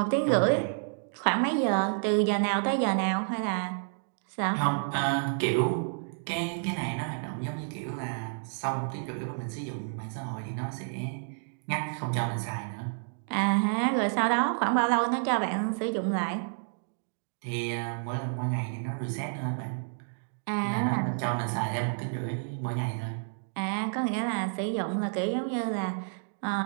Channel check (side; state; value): left; silent; digital silence